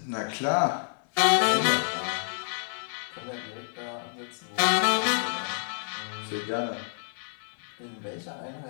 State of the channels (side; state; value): right; silent; 59 dB below the other